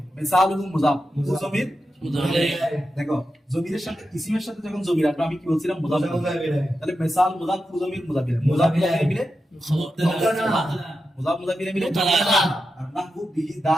মিসালুহু মুজাফ জমির দেখো জমিরের সাথে ইসিমের সাথে যখন জমির আসবে আমি কি বলছিলাম মুজাফ তাহলে মিসাল মুজাফ জমির মুজাফিলে মিলে মিলে আর নাহু বিহি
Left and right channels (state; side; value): normal; both; correlation 0.89